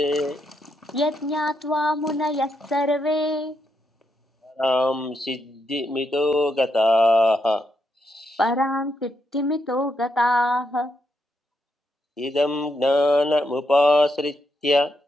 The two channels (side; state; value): both; normal; correlation 0.80